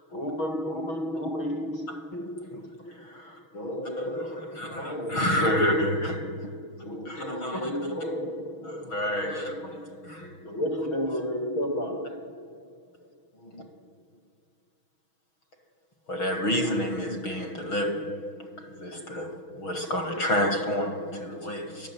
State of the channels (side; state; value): right; late; 6.3 ms